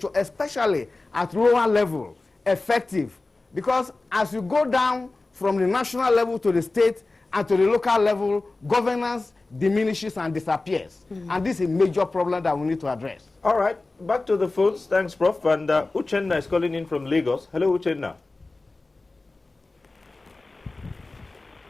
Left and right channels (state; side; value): quieter; right; 3.3 dB